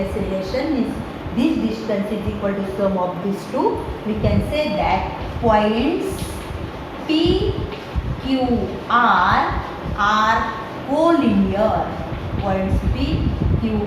relation means this distance is equal to sum of these two, we can say that points P, Q, R are collinear. Points P, Q,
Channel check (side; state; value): both; identical; correlation 1.00